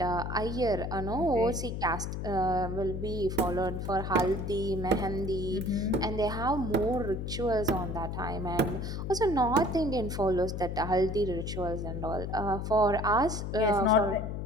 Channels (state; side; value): noise; left; hum, 4 dB below the sound